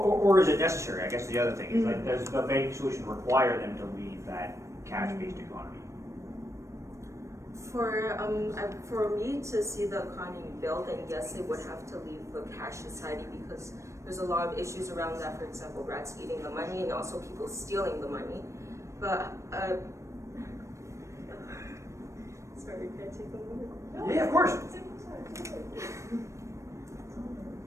is it necessary? I guess the other thing is, like, does the banking solution require them to leave that cash-based economy? For me to see the economy build, then yes, they would have to leave the cash society because there's a lot of issues around that. For example, rats eating the money and also people stealing the money. But sorry, can I take a moment? Yeah, of course.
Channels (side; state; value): left; late; 0.15 ms